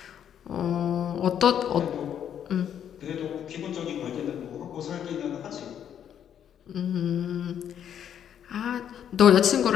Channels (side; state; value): right; quieter; 9.3 dB